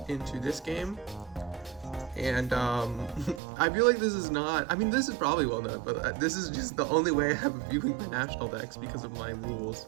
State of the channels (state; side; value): drops out; left; at 3.4 s